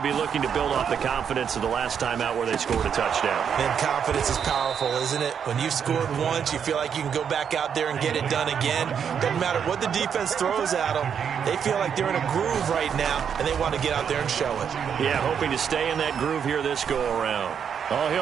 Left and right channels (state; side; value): quieter; left; 7.6 dB